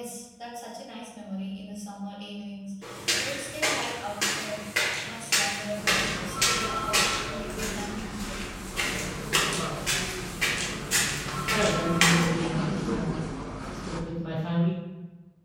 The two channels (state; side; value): identical; both; correlation 1.00